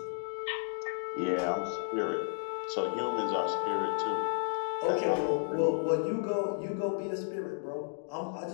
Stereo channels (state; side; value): silent; right; digital silence